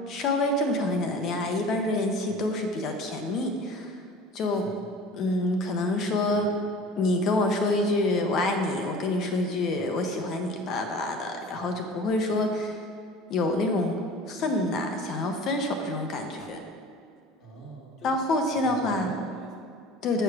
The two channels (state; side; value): normal; both; correlation 0.42